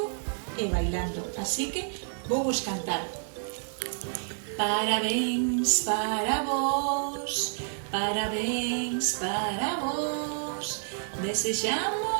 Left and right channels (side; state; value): left; silent; 58 dB below the other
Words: e bailando, así que vou vos cantar. Parabéns para vos, parabéns para vos.